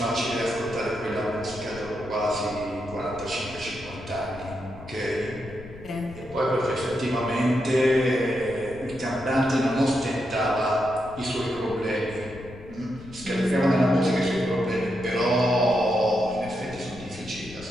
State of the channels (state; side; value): noise; left; rumble, 16 dB below the sound